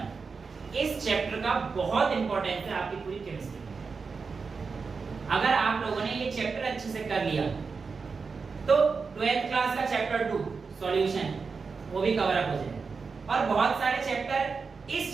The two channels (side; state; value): left; quieter; 4.9 dB